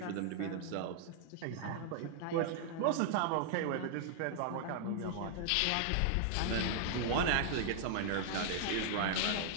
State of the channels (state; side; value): different; both; correlation -0.01